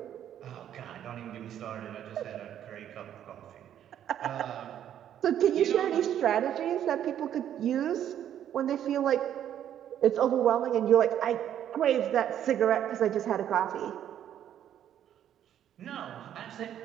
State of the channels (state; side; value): quieter; left; 10.4 dB